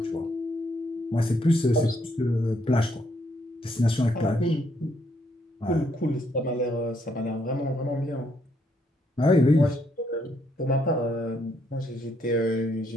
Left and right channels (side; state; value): both; normal; correlation 0.73